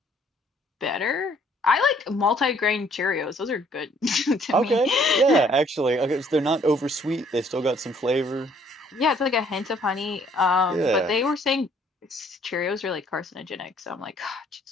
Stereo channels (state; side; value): normal; both; correlation 0.62